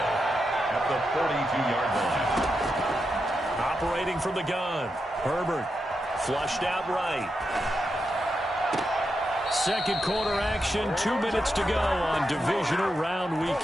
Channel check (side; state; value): both; normal; correlation 0.86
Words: at the 42-yard line. Operating from the gun, Herbert flushed out right. Second quarter action, 2 minutes to go on divisional round